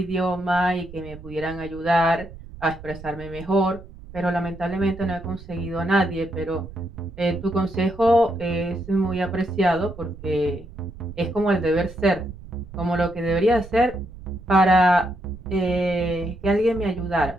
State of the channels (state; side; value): noise; right; rumble, 16 dB below the sound